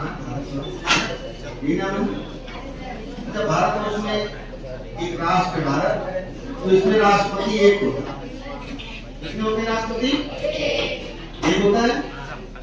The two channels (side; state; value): both; identical; correlation 1.00